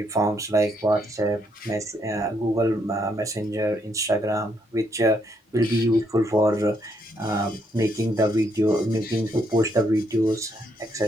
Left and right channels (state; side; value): normal; both; correlation 0.74